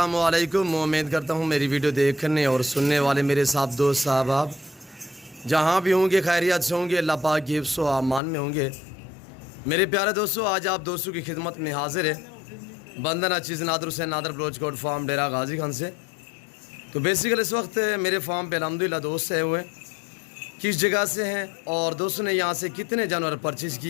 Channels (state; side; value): drops out; right; at 8.2 s